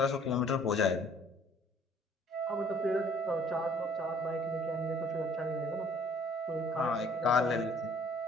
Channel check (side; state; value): both; normal; correlation 0.57